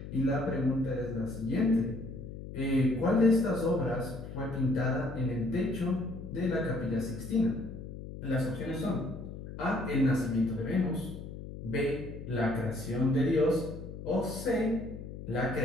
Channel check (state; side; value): noise; left; hum, 11 dB below the sound